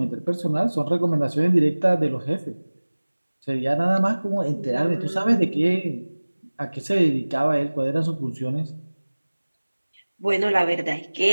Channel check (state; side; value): inverted; both; correlation -1.00